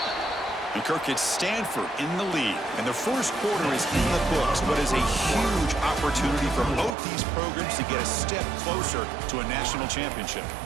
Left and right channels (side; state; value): left; drops out; at 7.0 s